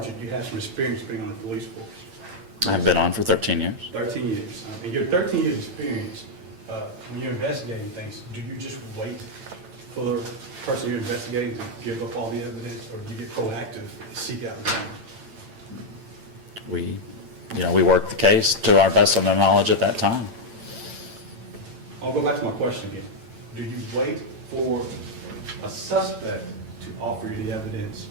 you have some experience being on the police force. I've been on for 13 years. 13 years. In your 13 years experience, when you're investigating things, do you just wait for the person you're investigating to give up all the evidence, or do you get proactive and seek out the evidence? We work the case to our best of our knowledge at that time. I'll go back to my question again. Do you wait for a suspect to offer you the evidence,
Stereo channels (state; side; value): late; left; 8.9 ms